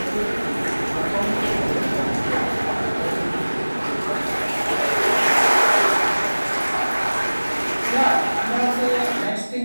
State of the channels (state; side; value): inverted; both; correlation -1.00